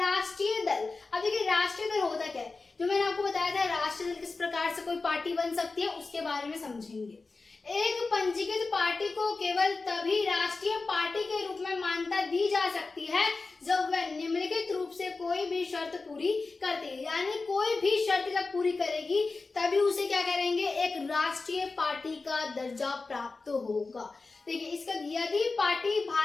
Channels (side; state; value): right; quieter; 3.9 dB